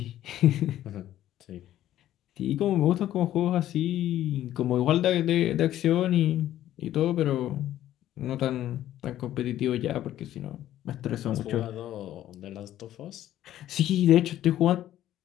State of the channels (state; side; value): quieter; right; 12.8 dB